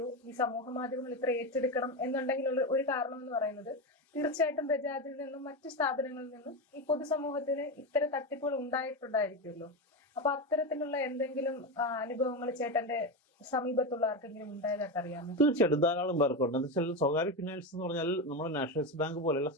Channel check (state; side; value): normal; both; correlation 0.15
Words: ഈ സമൂഹ മാധ്യമങ്ങൾ ഇത്ര ഏറ്റെടുക്കണം എന്നുണ്ടെങ്കിലുള്ള ഒരു കാരണം എന്ന് പറയുന്നത് തീർച്ചയായിട്ടും ബജാജിൽ നിന്നും മറ്റു സ്ഥാപനങ്ങളിൽ നിന്നും ഈ പൊതുസമൂഹത്തിന് ഇത്തരം തട്ടിപ്പുകൾ ഉണ്ടായിട്ടുണ്ടായിരിക്കുമല്ലോ. അപ്പൊ അത്തരത്തിലുള്ള എന്തെങ്കിലും അനുഭവങ്ങൾ ചേട്ടന്റെ സമീപത്തുള്ള ആർക്കെങ്കിലും ഉണ്ടായതായിട്ട് അറിയാമോ? തീർച്ചയായിട്ടും ധാരാളം പേർക്കുണ്ട്. എന്താ വെച്ചാൽ സ്വകാര്യ ഫിനാൻസ് എന്ന് പറഞ്ഞാൽ നമ്മുടെ നാഷണലൈസ് ബാങ്ക് പോലെയുള്ള